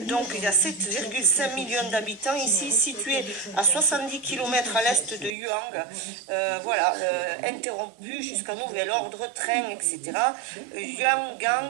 il y a 7,5 millions d'habitants ici, situés à 70 km à l'est de Yuang. Voilà, interrompu jusqu'à nouvel ordre, train, etc.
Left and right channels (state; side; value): drops out; left; at 5.4 s